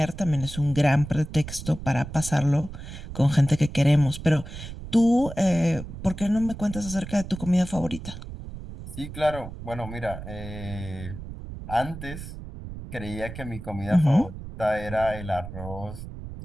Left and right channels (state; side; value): noise; right; rumble, 11 dB below the sound